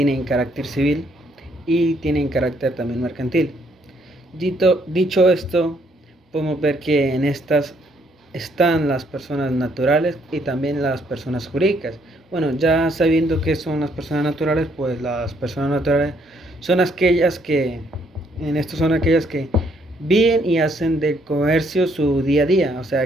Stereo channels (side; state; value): both; normal; correlation 0.69